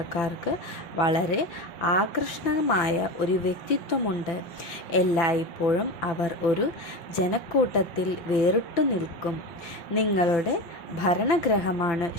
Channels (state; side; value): late; right; 5.9 ms